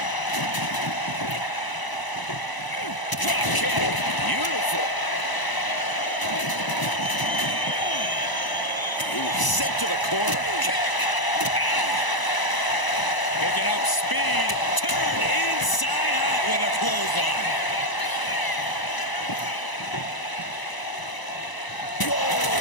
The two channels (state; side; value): late; right; 1.0 ms